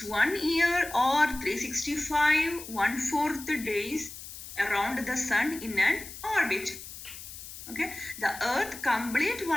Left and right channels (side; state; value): left; noise; hiss, 13 dB below the sound